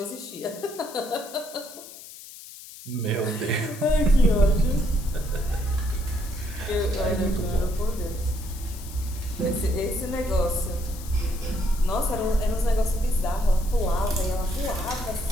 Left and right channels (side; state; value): left; noise; hiss, 15 dB below the sound